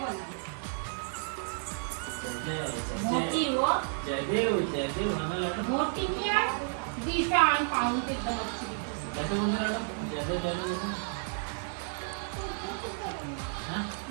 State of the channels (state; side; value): silent; left; 55 dB below the other